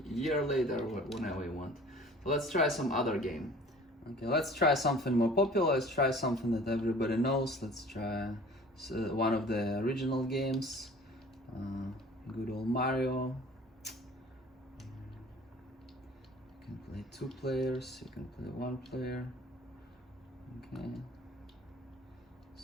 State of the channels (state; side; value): normal; both; correlation 0.47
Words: a year later or whenever you want. let's try some other game. Okay, let's try something more popular. Let's try something that everybody knows. Let's try one of the original games. Good old Mario. You can play 2 players, you can play 1 player. Okay.